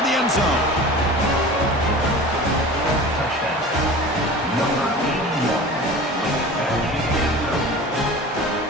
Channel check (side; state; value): both; normal; correlation 0.37